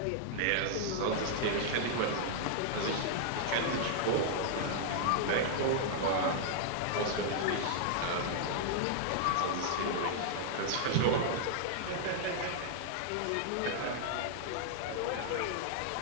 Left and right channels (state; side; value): different; both; correlation -0.01